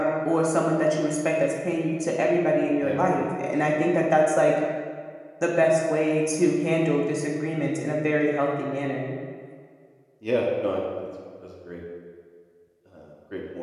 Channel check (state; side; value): identical; both; correlation 1.00